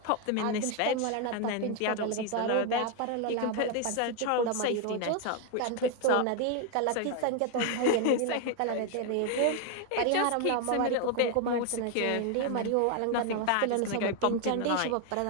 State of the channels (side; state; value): both; different; correlation 0.01